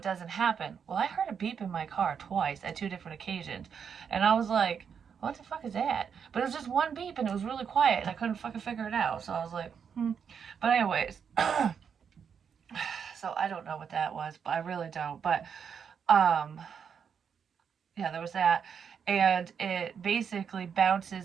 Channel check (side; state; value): left; quieter; 7.1 dB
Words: doesn't happen. Well, I heard a beep in my car twice at 2 different occasions, and I was like, what the fuck is that? But it was just one beep, and it was really quiet, and I couldn't fucking figure it out. So I was like, But anyways, so I don't know what that was, but I really don't. But yeah, there was that, and it basically